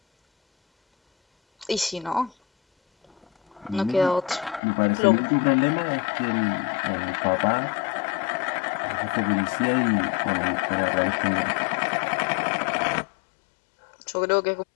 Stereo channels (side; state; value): right; drops out; at 4.6 s